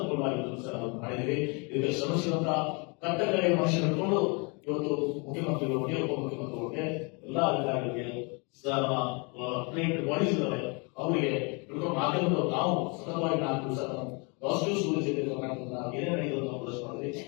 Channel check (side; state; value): right; quieter; 32.0 dB